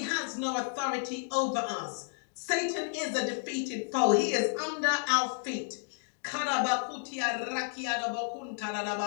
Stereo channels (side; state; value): right; silent; 56 dB below the other